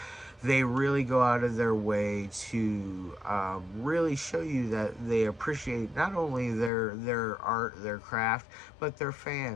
they really go out of their way to really show you that they appreciate not only their art, their craft, but their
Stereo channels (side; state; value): right; drops out; at 6.7 s